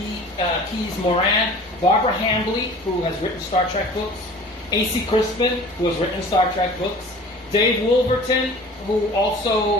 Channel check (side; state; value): both; normal; correlation 0.43